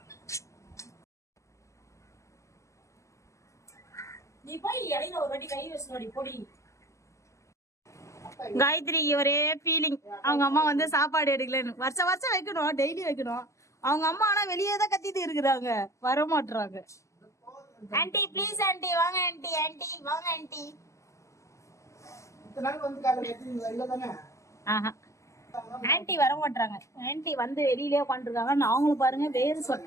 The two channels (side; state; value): right; late; 0.15 ms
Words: நீ போய் இடையில ஒரு வாட்டி கை வச்சுடி பொடி. காயத்ரி ஒரே ஃபீலிங், அவங்க அம்மா வந்து சாப்பாடு எடுக்கலன்னு. வருஷம் வருஷம் வைக்கணும், டெய்லி வைக்கணும். அவங்க அம்மா ஆனா வெளியே தான் கத்திட்டு இருக்கிறாங்க, வர மாட்டுறாங்க. ஆன்ட்டி ப்ளீஸ் ஆன்ட்டி வாங்க, ஆன்ட்டி ஆன்ட்டி வாங்க ஆன்ட்டி. ஆஹா ஆன்ட்டி வர மாட்டாங்க. ஆன்ட்டி வந்து வெளியிலே உட்காந்துருக்காங்க. நாங்களும் பாருங்க வேறு